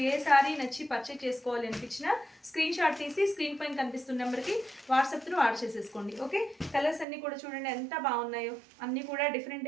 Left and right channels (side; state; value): left; drops out; at 7.1 s